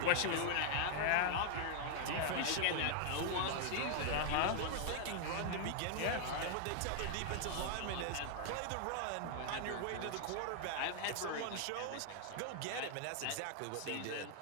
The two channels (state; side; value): different; both; correlation 0.00